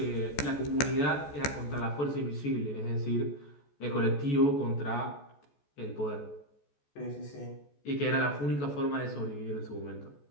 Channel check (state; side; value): late; right; 14 ms